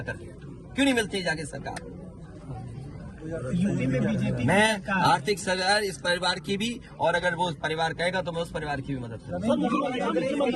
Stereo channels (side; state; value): both; identical; correlation 1.00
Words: क्यों नहीं मिलते जाके सरकार? मैं आर्थिक सहायता इस परिवार की भी, और अगर वो परिवार कहेगा तो मैं उस परिवार की भी मदद करूंगा।